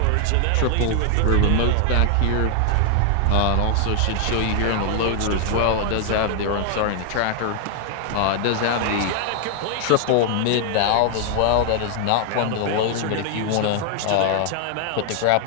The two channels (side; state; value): both; different; correlation 0.00